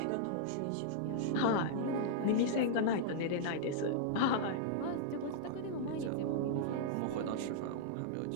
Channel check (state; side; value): different; both; correlation -0.02